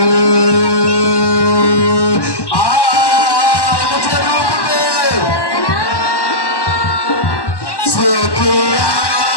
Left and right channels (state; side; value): late; right; 1.1 ms